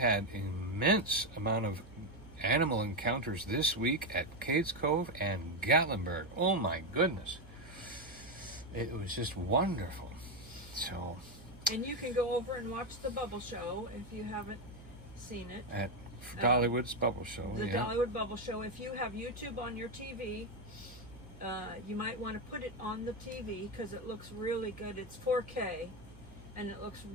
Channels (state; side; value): noise; right; hum, 20 dB below the sound